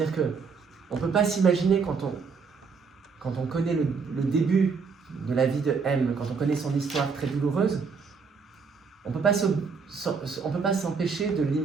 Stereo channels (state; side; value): quieter; left; 5.2 dB